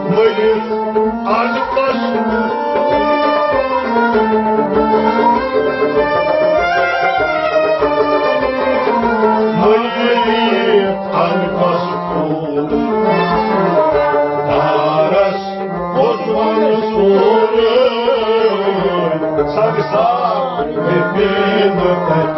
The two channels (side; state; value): both; identical; correlation 1.00